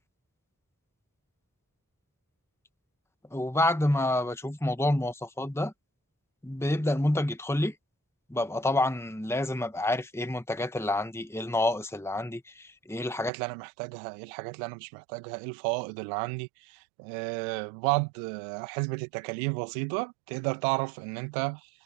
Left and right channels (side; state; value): left; drops out; at 13.3 s